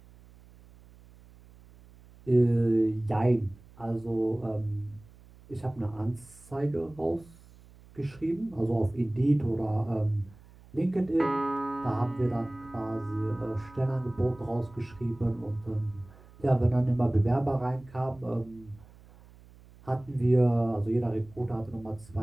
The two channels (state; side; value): noise; right; hum, 23 dB below the sound